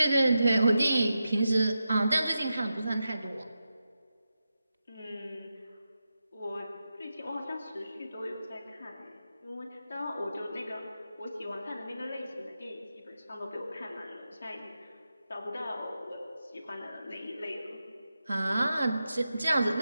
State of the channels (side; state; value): both; inverted; correlation -0.90